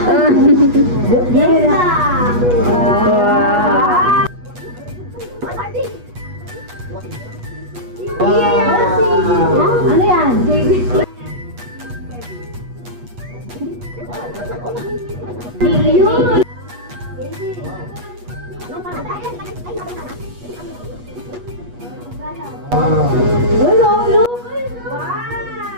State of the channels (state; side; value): late; left; 8.3 ms